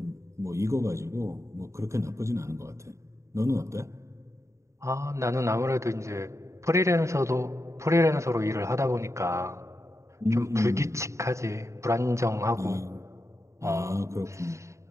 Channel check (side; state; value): left; late; 0.14 ms